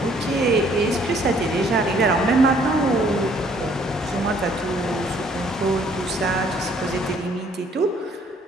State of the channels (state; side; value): normal; both; correlation 0.62